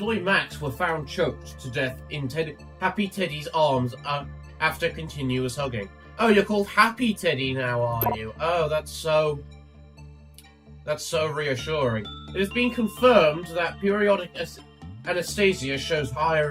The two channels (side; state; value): both; identical; correlation 1.00